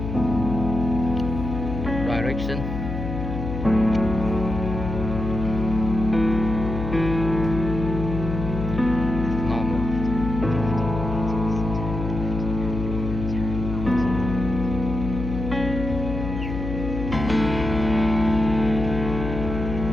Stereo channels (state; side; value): noise; left; hum, 5 dB below the sound